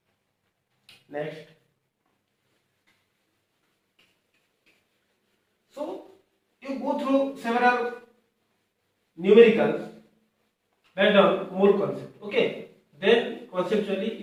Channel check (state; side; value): identical; both; correlation 1.00